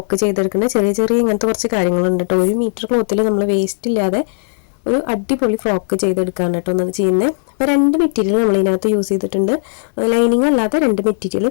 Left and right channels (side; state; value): right; silent; digital silence